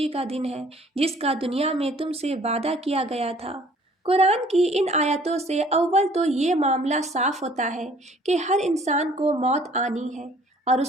کا دن ہے جس کا دنیا میں تم سے وعدہ کیا گیا تھا۔ قرآن کی ان آیتوں سے اول تو یہ معاملہ صاف ہوتا ہے کہ ہر انسان کو موت آنی ہے، اور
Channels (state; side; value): normal; both; correlation 0.56